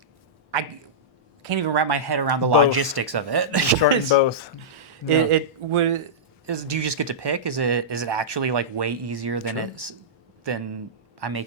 can't even wrap my head around the logistics of it. Starting both. Do you just get to pick? Is it actually like way easier than I'm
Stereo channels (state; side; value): normal; both; correlation -0.15